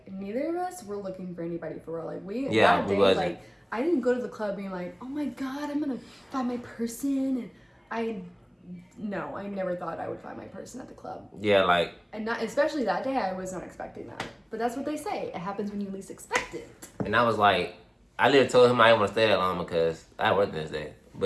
neither of us were looking for anybody for real. Like, we wasn't. Like, I didn't go to the club being like, oh my god, I'm gonna find my person, and No, I never thought I would find my person at the club. Yeah, like... And not, especially that day, I was not expecting that. But that's what they say. It happens when you least expect it. And I was like... I literally told him I didn't want to stay that long because I worked this day.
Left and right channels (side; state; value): both; identical; correlation 1.00